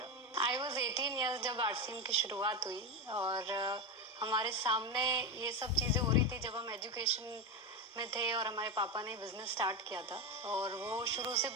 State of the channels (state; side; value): normal; both; correlation 0.15